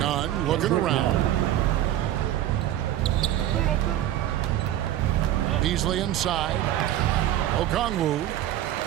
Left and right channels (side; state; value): left; quieter; 12.6 dB